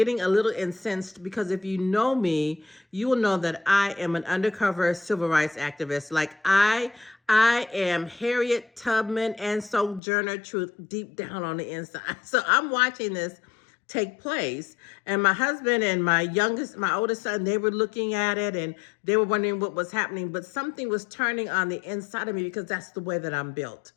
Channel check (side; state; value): right; drops out; at 10.0 s